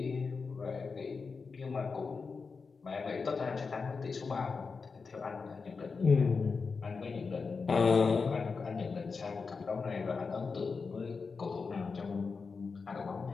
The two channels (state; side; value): quieter; right; 4.8 dB